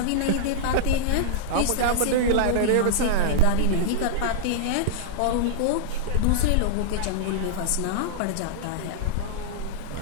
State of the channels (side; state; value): both; different; correlation -0.02